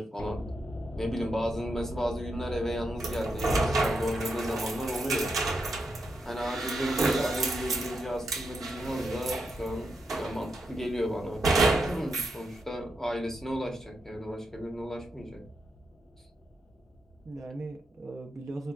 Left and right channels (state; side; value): normal; both; correlation 0.84